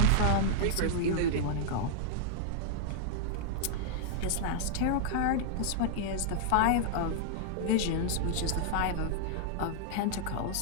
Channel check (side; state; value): both; different; correlation -0.01